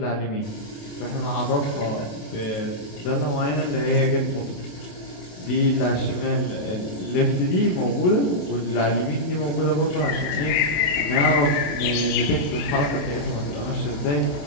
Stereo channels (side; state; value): right; late; 29 ms